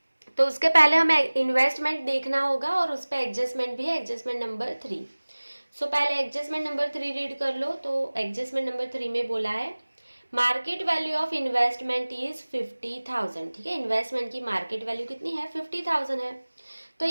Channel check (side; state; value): both; inverted; correlation -1.00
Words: तो उसके पहले हमें इन्वेस्टमेंट देखना होगा और उस पर एडजस्टमेंट भी है, एडजस्टमेंट नंबर 3। सो पहले एडजस्टमेंट नंबर 3 रीड कर लो। तो एडजस्टमेंट नंबर 3 में बोला है market value of investment is 50,000। ठीक है, इन्वेस्टमेंट की मार्केट वैल्यू कितनी है, 50,000 है। तो